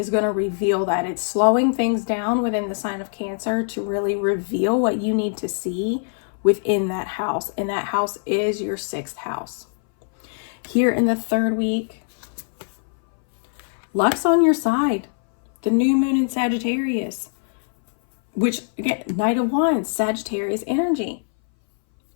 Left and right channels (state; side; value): silent; right; 61 dB below the other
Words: going to reveal that. It's slowing things down within the sign of Cancer to really reveal what you need to see within that house. And that house is your 6th house. Here in the third week, luck's on your side. The new moon in Sagittarius. which again, Knight of Wands, Sagittarius energy.